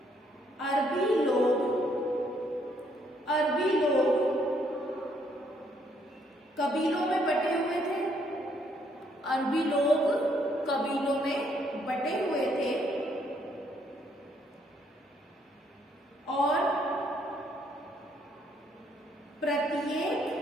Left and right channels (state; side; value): normal; both; correlation 0.69